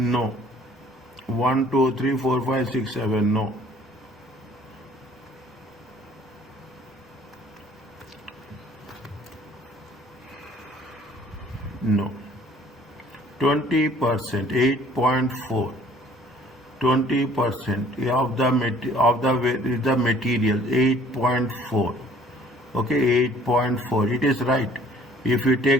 1, 2, 3, 4, 5, 6, 7. No. No. 20%, 8.4. 20% of the material, 8.4. Okay, 8.4. It is right. If you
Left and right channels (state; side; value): normal; both; correlation 0.56